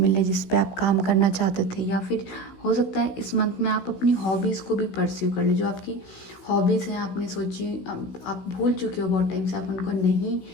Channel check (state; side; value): late; right; 16 ms